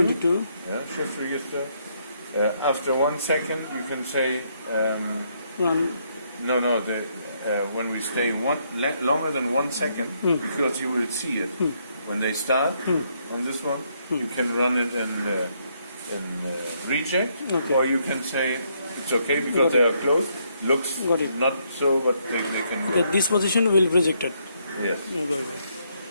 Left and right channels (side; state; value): both; inverted; correlation -0.73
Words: 22. Yeah, shift register. After 1 second, you can say Run. no. When we stay longer than 1 second, because you will see it when they start on this one, you can run it in reject, Okay. or you can say it's okay because they are closed. Looks Got it. not so, but they can. Okay, this position will be rejected. Yes. Yeah, got it.